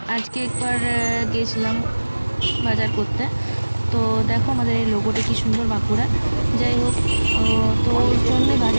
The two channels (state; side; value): inverted; both; correlation -1.00